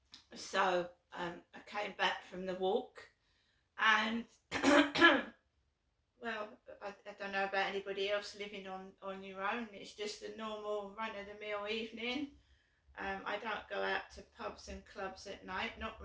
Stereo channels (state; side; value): identical; both; correlation 1.00